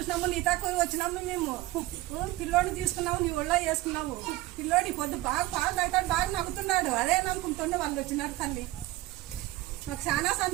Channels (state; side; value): quieter; left; 17.8 dB